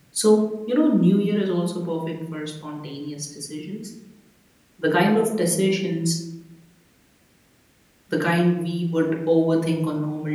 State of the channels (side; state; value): both; identical; correlation 1.00